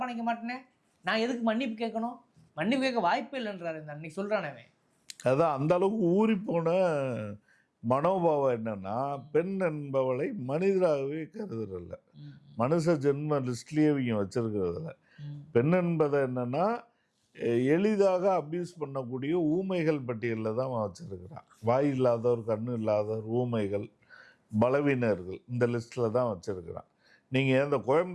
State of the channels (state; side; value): identical; both; correlation 1.00